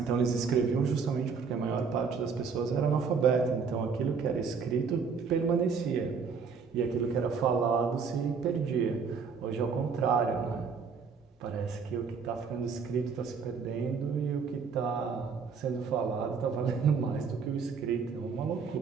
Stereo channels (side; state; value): left; quieter; 5.6 dB